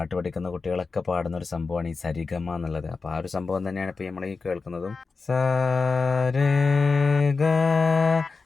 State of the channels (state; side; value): quieter; right; 4.4 dB